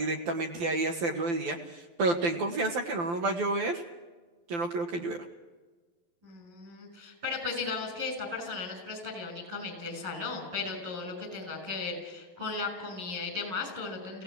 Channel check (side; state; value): left; late; 12 ms